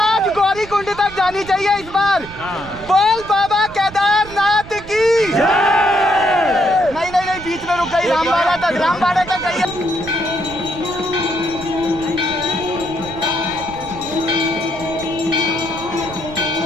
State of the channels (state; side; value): noise; right; rumble, 16 dB below the sound